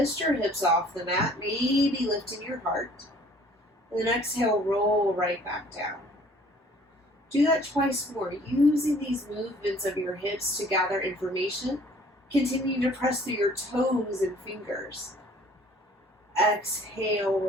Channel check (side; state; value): both; normal; correlation 0.55